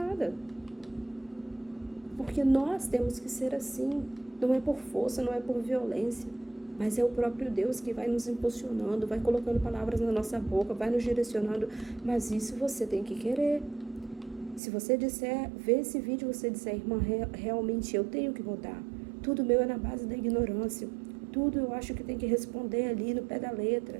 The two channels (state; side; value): drops out; left; at 14.6 s